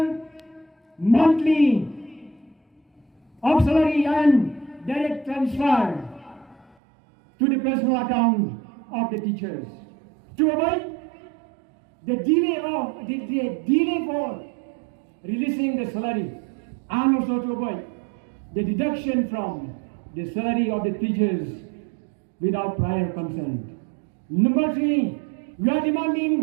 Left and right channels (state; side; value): drops out; left; at 6.8 s